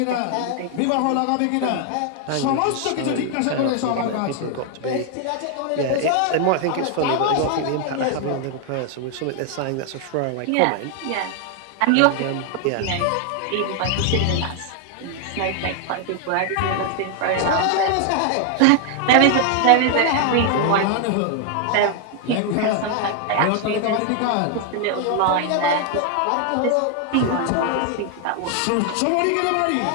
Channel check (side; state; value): both; different; correlation 0.00